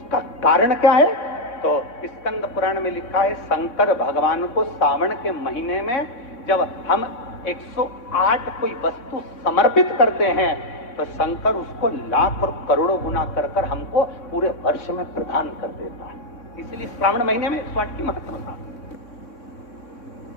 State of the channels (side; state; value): right; late; 3.6 ms